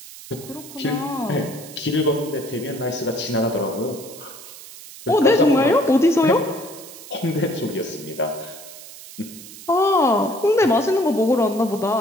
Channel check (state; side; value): noise; right; hiss, 16 dB below the sound